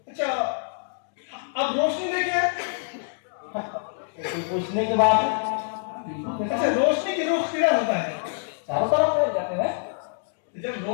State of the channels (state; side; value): silent; right; digital silence